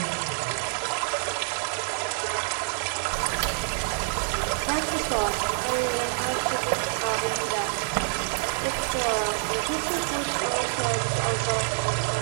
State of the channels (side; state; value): left; silent; digital silence